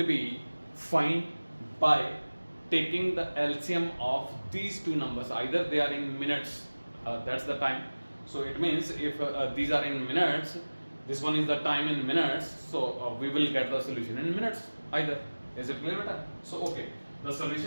be find by taking the LCM of these two numbers, either they are in minutes, that's the time. So it means if these are in minutes, this one is the time in minutes, so we will get the solution in minutes either. Is it clear, beta? So okay, the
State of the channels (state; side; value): inverted; both; correlation -1.00